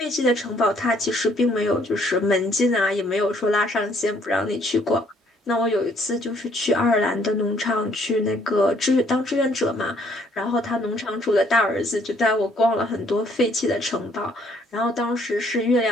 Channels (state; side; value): normal; both; correlation 0.64